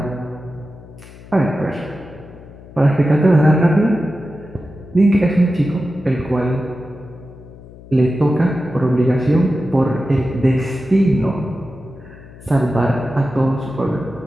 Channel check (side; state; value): left; noise; hum, 19 dB below the sound